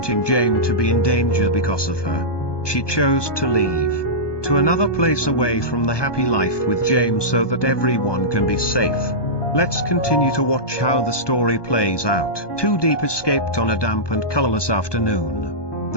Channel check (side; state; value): right; late; 1.2 ms